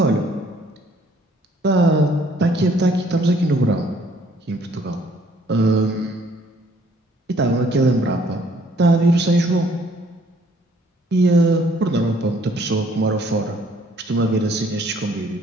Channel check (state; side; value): normal; both; correlation 0.62